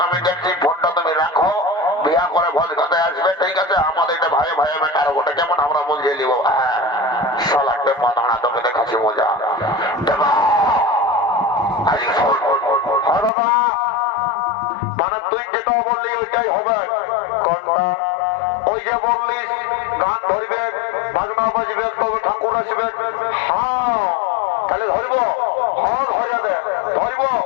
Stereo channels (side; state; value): right; drops out; at 13.3 s